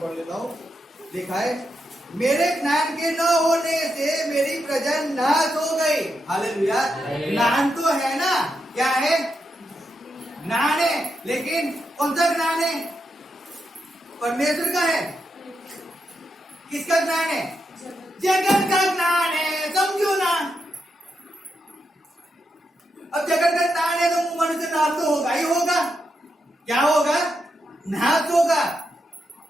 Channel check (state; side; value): normal; both; correlation 0.84